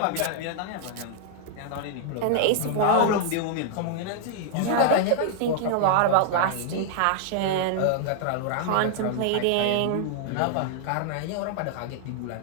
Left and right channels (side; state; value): both; different; correlation -0.01